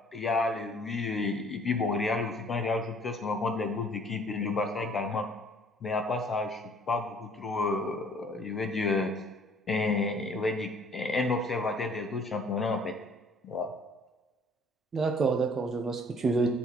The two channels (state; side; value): normal; both; correlation 0.57